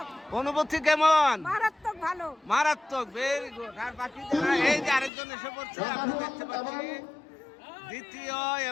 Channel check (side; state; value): right; drops out; at 5.1 s